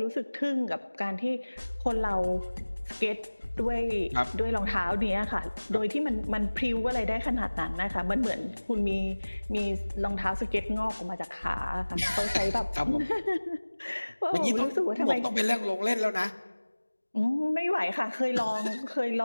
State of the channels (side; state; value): both; inverted; correlation -1.00